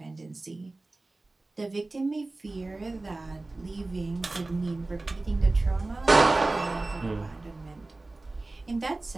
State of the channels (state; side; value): quieter; left; 3.1 dB